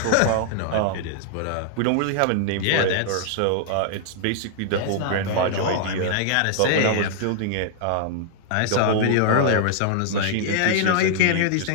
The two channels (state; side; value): different; both; correlation -0.01